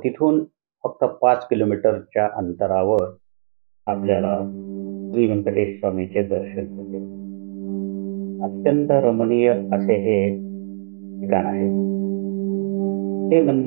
तिथून फक्त 5 किलोमीटरच्या अंतरावर आपल्याला श्री व्यंकटेश स्वामीचे दर्शन होते. अत्यंत रमणीय असे हे ठिकाण आहे. हे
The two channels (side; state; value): left; silent; digital silence